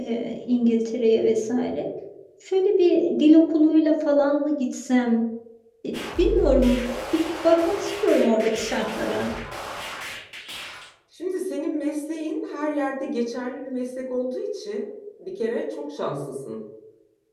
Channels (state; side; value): identical; both; correlation 1.00